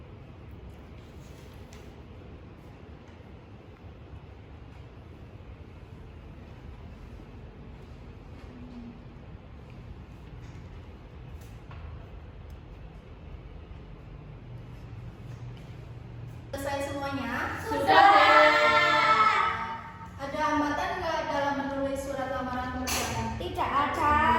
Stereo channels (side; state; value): both; identical; correlation 1.00